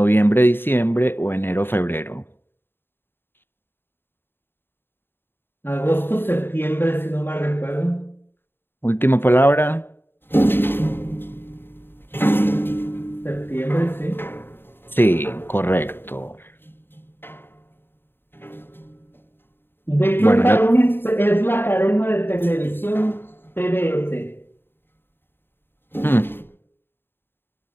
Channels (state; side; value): late; right; 0.10 ms